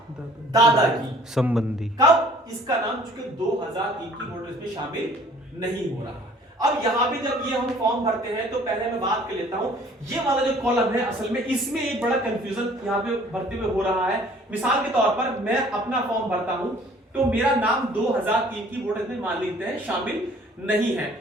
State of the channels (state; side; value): normal; both; correlation 0.54